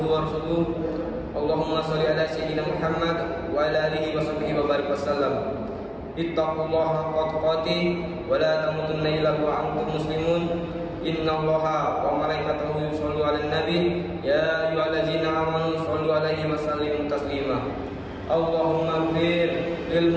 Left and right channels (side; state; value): both; identical; correlation 1.00